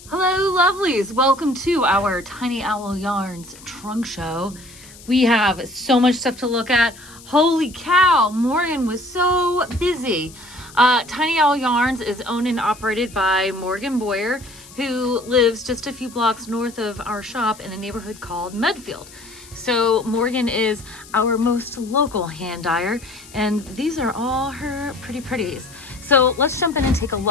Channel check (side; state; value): left; noise; hiss, 20 dB below the sound